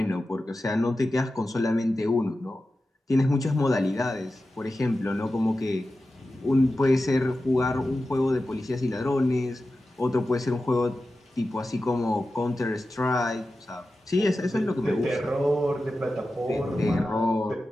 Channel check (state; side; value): normal; both; correlation 0.93